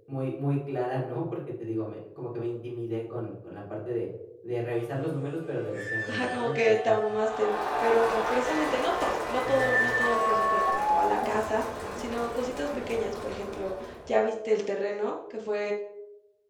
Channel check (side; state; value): both; identical; correlation 1.00